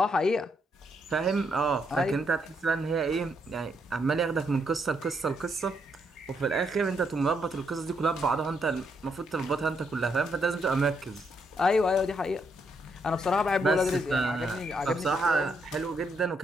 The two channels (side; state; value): both; normal; correlation 0.76